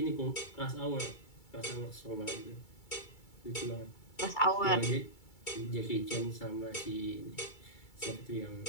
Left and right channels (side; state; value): right; late; 2.3 ms